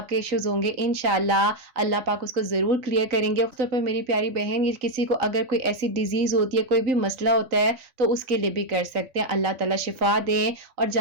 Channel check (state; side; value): late; left; 3.9 ms